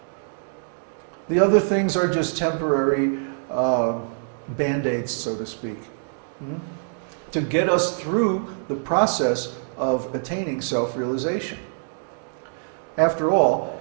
The other things are just temporary band-aids, so to speak, to get us through the process of attaining self-realization. After all,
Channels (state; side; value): silent; left; digital silence